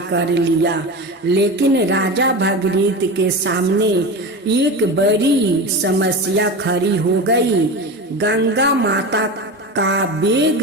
कर लिया, लेकिन राजा भागीरथ के सामने एक बड़ी समस्या खड़ी हो गई। गंगा माता का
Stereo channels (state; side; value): normal; both; correlation 0.26